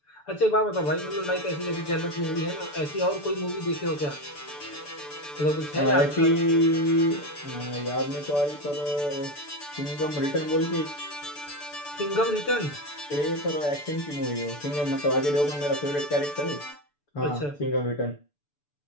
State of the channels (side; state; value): right; late; 6.9 ms